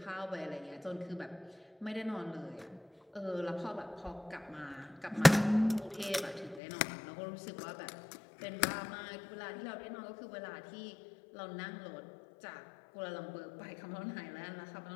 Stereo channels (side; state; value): right; drops out; at 6.6 s